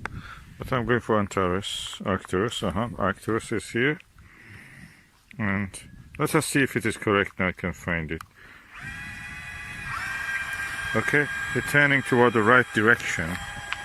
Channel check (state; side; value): identical; both; correlation 1.00